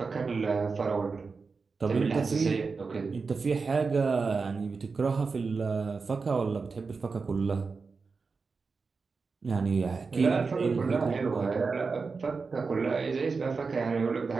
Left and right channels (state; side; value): quieter; left; 4.6 dB